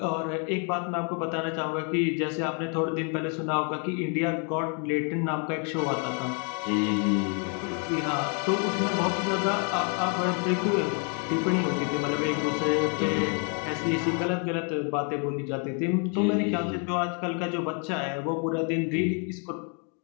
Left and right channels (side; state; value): right; quieter; 39.3 dB